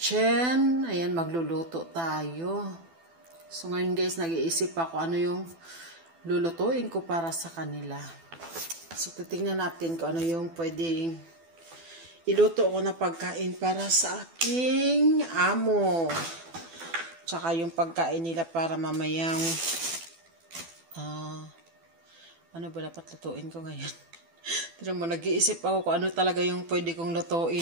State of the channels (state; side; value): late; left; 12 ms